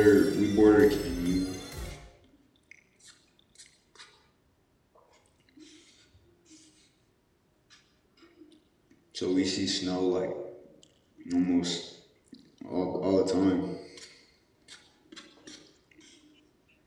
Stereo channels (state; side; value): identical; both; correlation 1.00